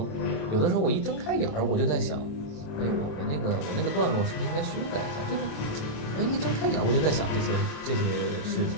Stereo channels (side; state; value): right; late; 27 ms